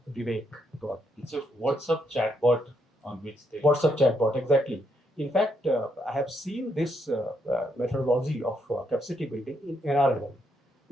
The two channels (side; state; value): both; normal; correlation 0.77